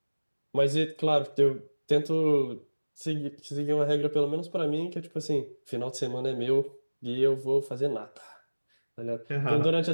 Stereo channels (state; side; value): inverted; both; correlation -1.00